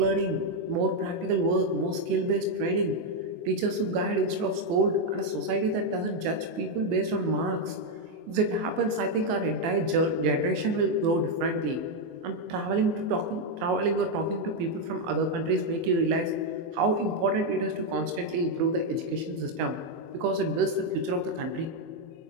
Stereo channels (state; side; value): late; left; 24 ms